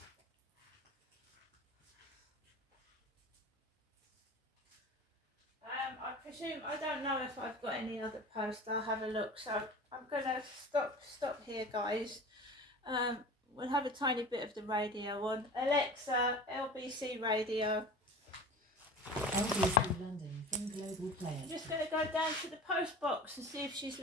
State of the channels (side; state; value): both; normal; correlation 0.37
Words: I presume, I don't know if I've got any other posts. I'll have a look. So I'm going to stop here, guys. We'll have a tiny bit of the radio on. Alexa, LBC radio. LBC London from Global Player. I'm just going to go down to the post box and see if she's